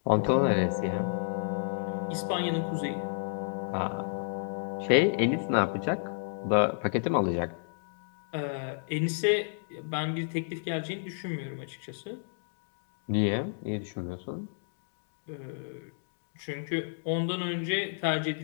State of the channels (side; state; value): right; silent; digital silence